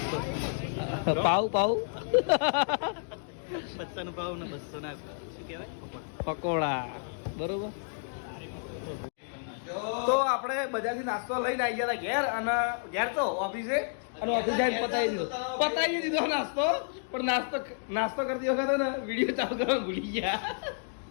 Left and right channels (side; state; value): right; silent; digital silence